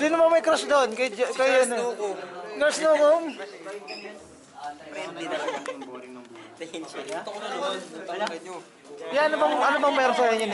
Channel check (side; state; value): both; identical; correlation 1.00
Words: ba may crush doon? Kay ano? Nurse Nukum? Yan, ano bang meron sa inyo